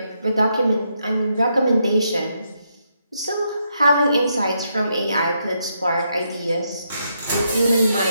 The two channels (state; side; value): inverted; both; correlation -0.79